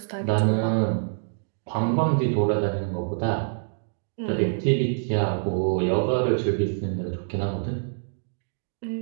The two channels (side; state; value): left; silent; digital silence